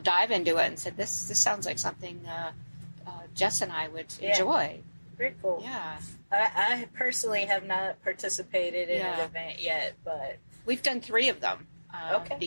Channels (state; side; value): inverted; both; correlation -1.00